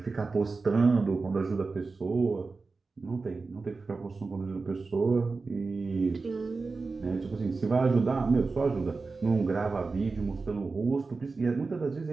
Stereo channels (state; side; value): quieter; left; 4.1 dB